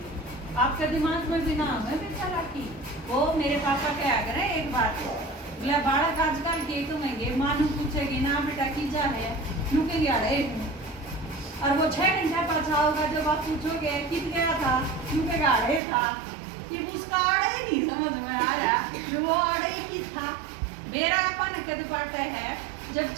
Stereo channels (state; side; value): drops out; left; at 15.8 s